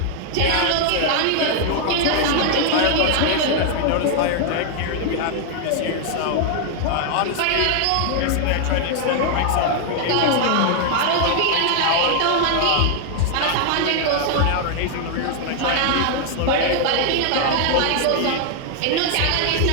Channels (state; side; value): different; both; correlation 0.00